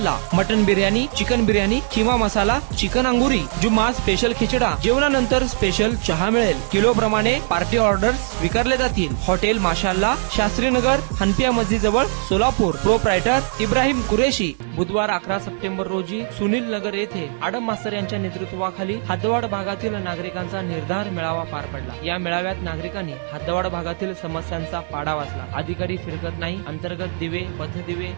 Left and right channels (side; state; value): left; silent; 62 dB below the other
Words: mutton biryani, chicken biryani, keema masala, chicken Angoori, Jumma special खिचडा, जेवणानंतर स्पेशल चहा मिळेल। किलो प्रमाणे पार्टी ऑर्डर्स स्वीकारले जातील। हॉटेल माशाअल्ला, शास्त्रीनगर, हनपिया मस्जिद जवळ, सोलापूर। प्रोप्रायटर इब्राहिम कुरेशी। बुधवार 11 सप्टेंबर रोजी सुनील नगर येथे आडम मास्तर यांच्या नेतृत्वाखाली हद्दवाड भागातील नागरिकांचा निर्धार मेळावा पार पडला। या मेळाव्यात नागरिकांनी हद्दवाड भागातील समस्यांचा पाडा वाचला। अधिकारी फिरकत नाही, अंतर्गत दिवे, पथदिवे